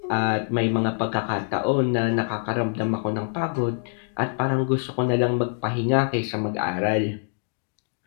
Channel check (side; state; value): right; silent; 62 dB below the other